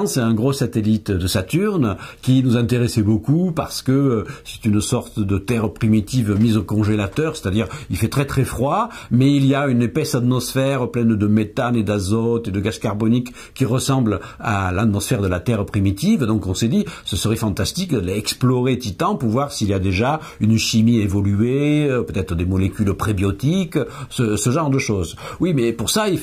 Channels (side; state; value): both; identical; correlation 1.00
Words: c'est un gros satellite de Saturne qui nous intéressait beaucoup parce que c'est une sorte de terre primitive mise au congélateur, c'est-à-dire il fait très très froid, mais il y a une épaisse atmosphère pleine de méthane et d'azote et de gaz carbonique qui ressemble à l'atmosphère de la terre primitive. Donc on s'est dit, ce serait fantastique d'explorer Titan pour voir s'il y a déjà une chimie évoluée, peut-être des molécules prébiotiques, ce genre de choses. Oui, mais pour ça, il